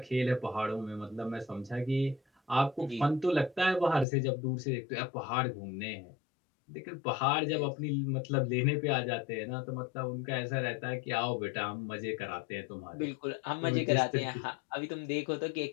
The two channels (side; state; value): right; drops out; at 4.0 s